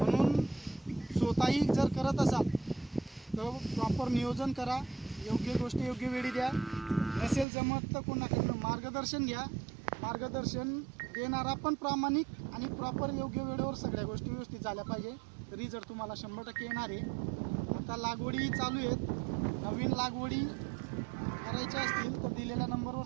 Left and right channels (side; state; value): left; drops out; at 7.5 s